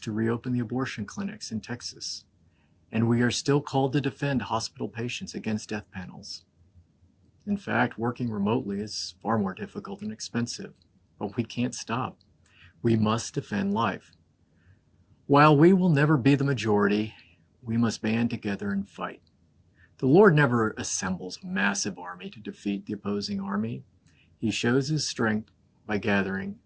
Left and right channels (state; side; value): identical; both; correlation 1.00